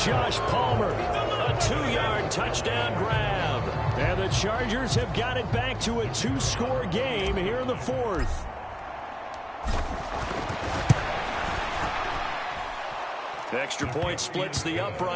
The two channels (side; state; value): both; identical; correlation 1.00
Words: Josh Palmer, a 2-yard touchdown grab. And the Chargers have got it back to a 2-score game here in the 4th. Extra point splits the